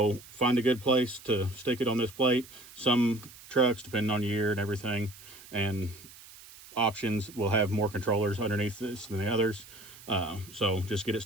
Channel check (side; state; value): right; noise; hiss, 19 dB below the sound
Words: find a good place to stick it on this plate. Some trucks, depending on year and everything and options, will have more controllers underneath this than the others. So just get it